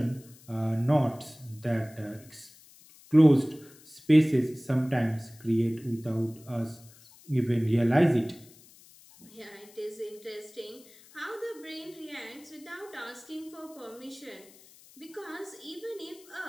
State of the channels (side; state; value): left; noise; hiss, 24 dB below the sound